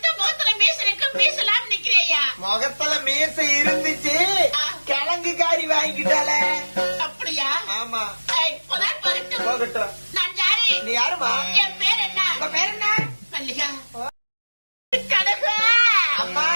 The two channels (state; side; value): inverted; both; correlation -1.00